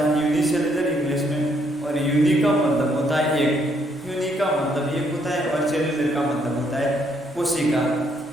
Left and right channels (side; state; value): both; normal; correlation 0.71